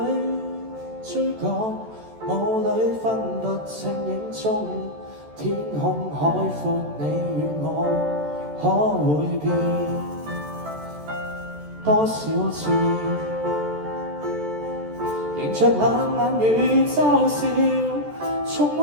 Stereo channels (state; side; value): late; left; 14 ms